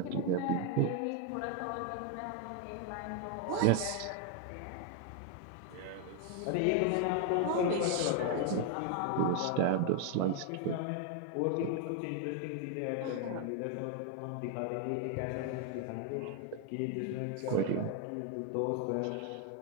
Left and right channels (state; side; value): different; both; correlation 0.01